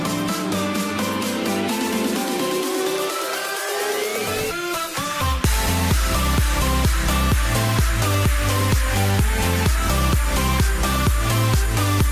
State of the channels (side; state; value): both; identical; correlation 1.00